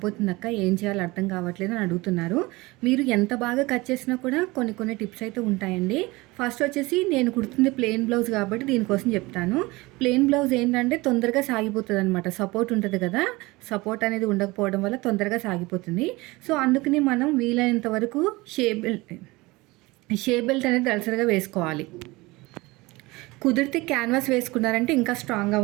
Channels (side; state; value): left; quieter; 22.2 dB